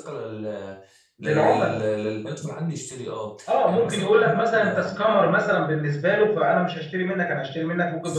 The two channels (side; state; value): both; identical; correlation 1.00